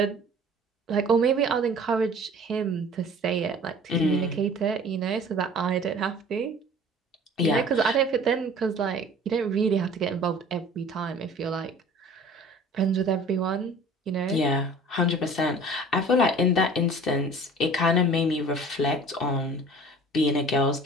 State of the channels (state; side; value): normal; both; correlation 0.46